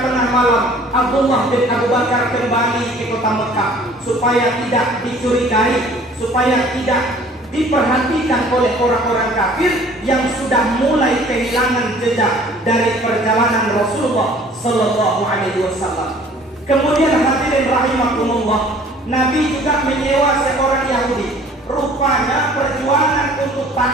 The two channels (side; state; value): both; normal; correlation 0.52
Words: tengah malam Abdullah bin Abu Bakar kembali ke kota Mekah supaya tidak dicurigai, supaya tidak diperhatikan oleh orang-orang kafir yang sudah mulai kehilangan jejak dari perjalanan Rasulullah Sallallahu Alaihi Wasallam. Kemudian hadirin rahimakumullah, Nabi juga menyewa seorang Yahudi. Rupanya perjuangan untuk